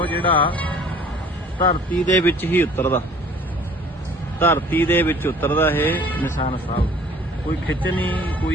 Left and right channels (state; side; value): normal; both; correlation 0.51